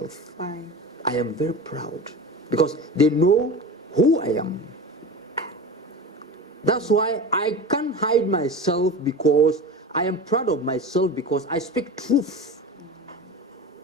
Why? I am very proud because they know who I am. That's why I can't hide myself, because I am proud of myself, because I speak truth.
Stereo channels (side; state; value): both; normal; correlation 0.30